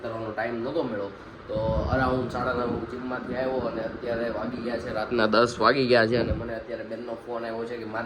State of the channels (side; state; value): both; identical; correlation 1.00